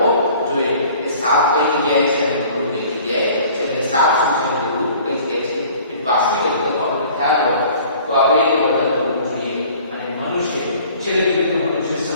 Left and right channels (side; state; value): both; inverted; correlation -0.50